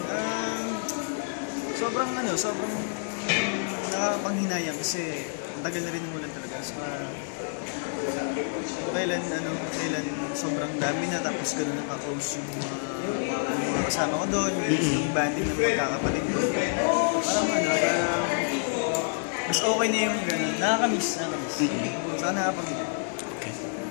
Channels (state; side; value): silent; right; digital silence